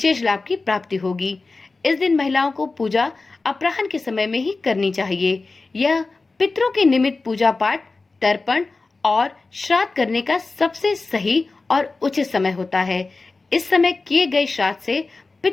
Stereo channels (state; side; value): quieter; right; 3.7 dB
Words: लाभ की प्राप्ति होगी। इस दिन महिलाओं को पूजा अपराह्न के समय में ही करनी चाहिए। यह पितरों के निमित्त पूजा पाठ, तर्पण और श्राद्ध करने का सबसे सही और उचित समय होता है। इस समय किए गए श्राद्ध से